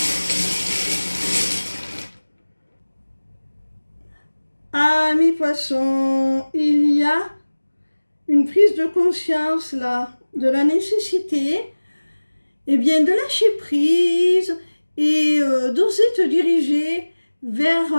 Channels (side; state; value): both; inverted; correlation -1.00